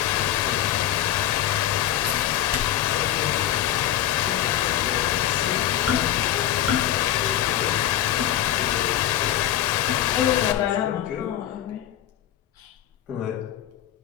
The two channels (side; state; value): right; quieter; 12.1 dB